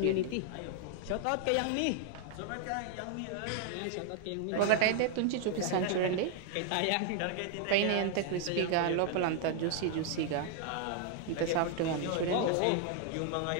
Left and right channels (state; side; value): different; both; correlation 0.00